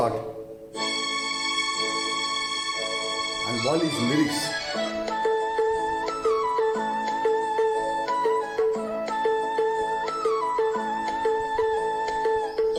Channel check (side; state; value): both; identical; correlation 1.00